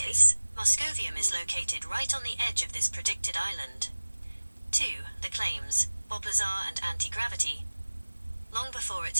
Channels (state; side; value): inverted; both; correlation -1.00